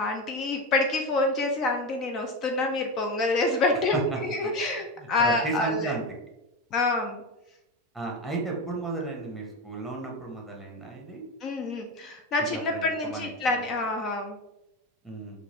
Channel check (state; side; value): normal; both; correlation 0.18